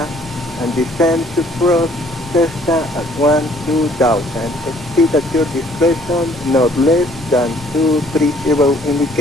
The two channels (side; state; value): both; normal; correlation 0.60